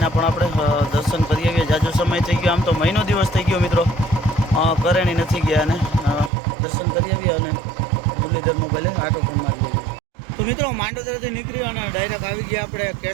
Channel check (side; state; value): left; drops out; at 6.3 s